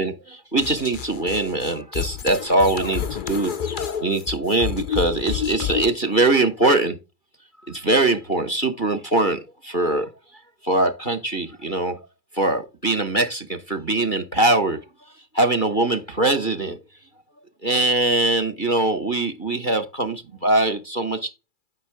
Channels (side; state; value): right; late; 2.3 ms